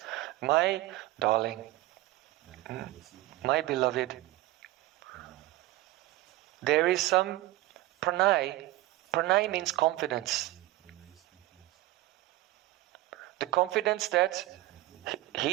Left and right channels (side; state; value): left; quieter; 17.6 dB